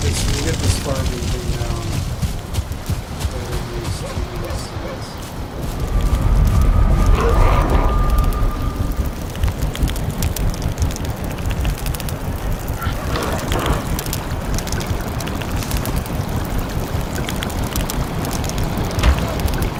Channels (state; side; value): identical; both; correlation 1.00